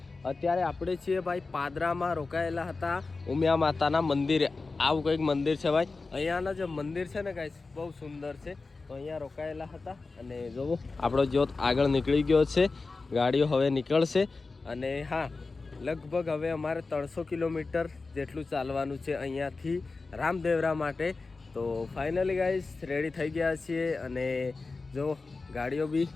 અત્યારે આપણે છીએ ભાઈ પાદરામાં રોકાયેલા હતા ઉમિયા માતાના મંદિરે. આવું કંઈક મંદિર છે ભાઈ. અહીંયાના જે મંદિર છે ને ગાઈસ, બહુ સુંદર છે. તો અહીંયા રોકાયેલા હતા અને જોવો આપણો જ્યોત આગળ નીકળી ગયો છે. ગાડીઓ હવે નીકળશે અને હા, લગભગ હવે અમારે 300 કિલોમીટર જેટલું ચાલવાનું છે અહીંયાથી રામદેવરા માટે. તો ફાઇનલી ગાઈસ રેડી થઈ ગયા છીએ અને જો ગાડીઓ બી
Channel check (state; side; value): quieter; right; 3.9 dB